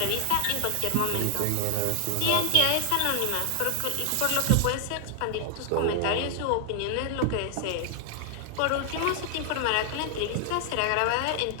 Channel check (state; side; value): different; both; correlation 0.00